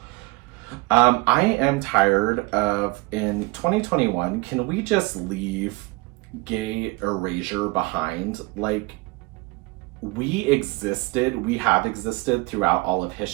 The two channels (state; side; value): quieter; left; 24.6 dB